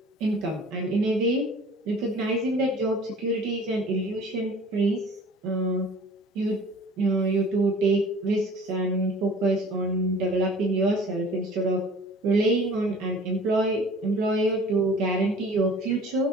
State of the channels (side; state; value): both; normal; correlation 0.47